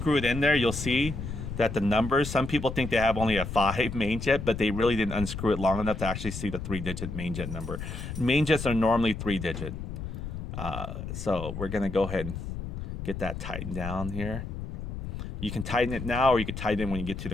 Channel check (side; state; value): left; noise; rumble, 7 dB below the sound